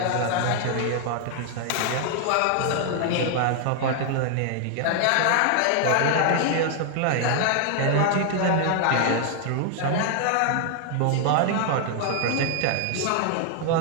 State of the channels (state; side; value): different; both; correlation 0.00